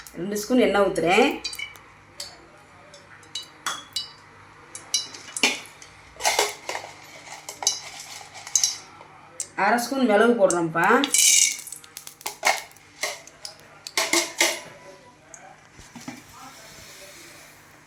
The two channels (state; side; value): identical; both; correlation 1.00